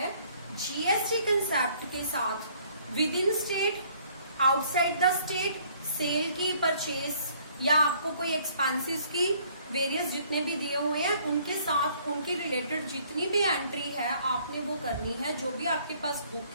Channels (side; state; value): both; inverted; correlation -0.61